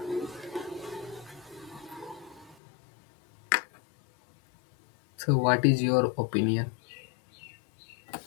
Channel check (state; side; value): drops out; right; at 2.6 s